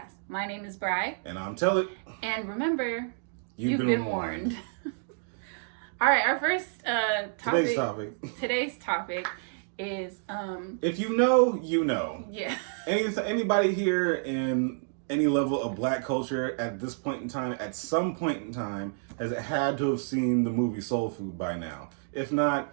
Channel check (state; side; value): silent; left; digital silence